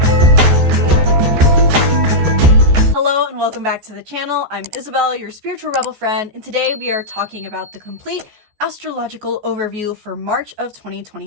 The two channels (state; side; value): late; left; 14 ms